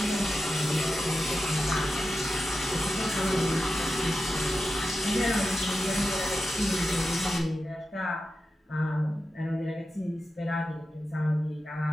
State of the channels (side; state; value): both; normal; correlation 0.91